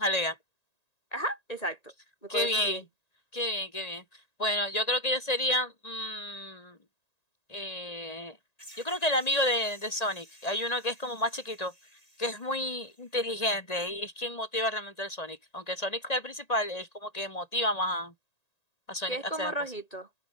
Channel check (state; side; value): late; right; 1.8 ms